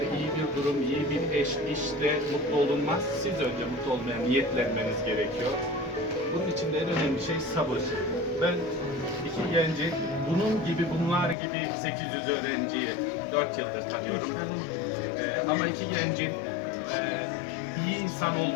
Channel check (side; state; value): right; drops out; at 11.4 s